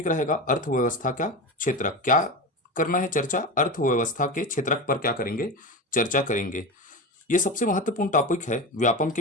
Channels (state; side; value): normal; both; correlation 0.23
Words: रहेगा अर्थव्यवस्था का क्षेत्रक। क्या करना है? चर्चा अर्थव्यवस्था के क्षेत्रक पर क्या करेंगे? चर्चा करेंगे। ये सबसे महत्वपूर्ण टॉपिक है व्यापम